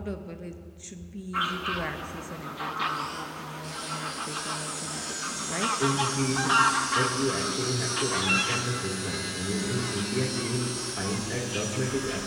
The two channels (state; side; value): identical; both; correlation 1.00